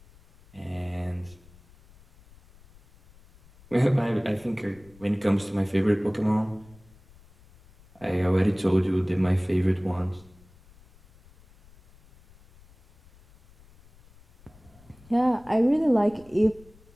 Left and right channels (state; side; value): noise; left; rumble, 26 dB below the sound